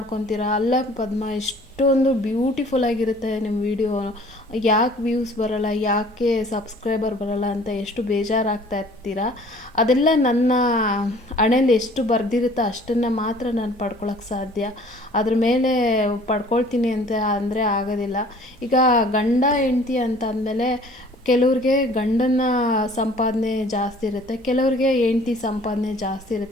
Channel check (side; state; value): both; normal; correlation 0.52